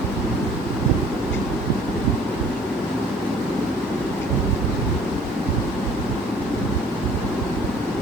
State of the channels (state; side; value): normal; both; correlation 0.54